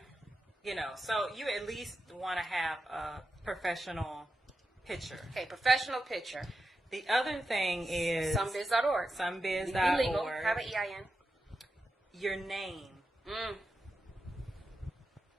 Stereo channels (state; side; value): normal; both; correlation 0.89